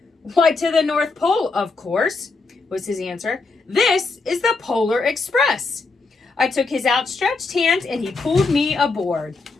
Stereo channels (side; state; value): right; quieter; 4.0 dB